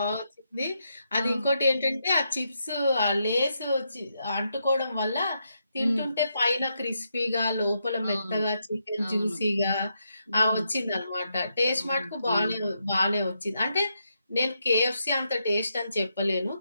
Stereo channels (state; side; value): inverted; both; correlation -0.82